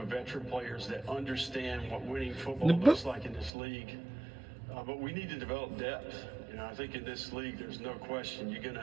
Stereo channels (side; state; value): left; drops out; at 3.5 s